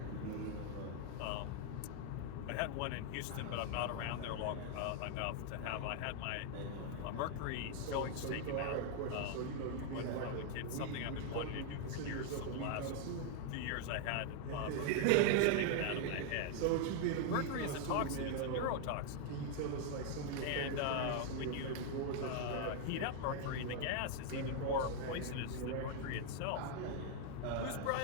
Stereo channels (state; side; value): different; both; correlation 0.00